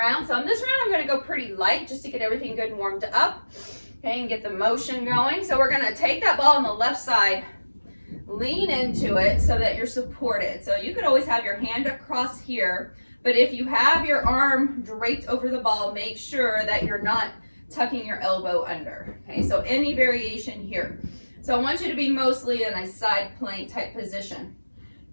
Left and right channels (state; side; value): inverted; both; correlation -1.00